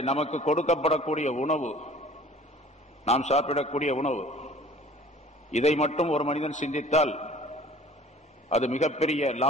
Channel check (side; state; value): both; normal; correlation 0.49